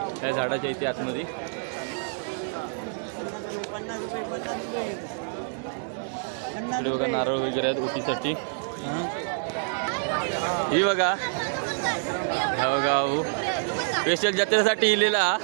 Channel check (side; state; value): left; silent; digital silence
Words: त्या झाडाच्या इथे आतमध्ये. इकडे बघा नारळ वगैरे आहेत ओटीसाठी. ही बघा हा बघा स्पेशल जत्रेसाठी इलेला